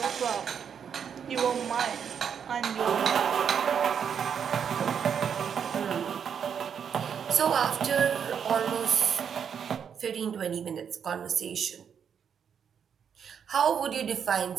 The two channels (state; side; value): quieter; left; 7.6 dB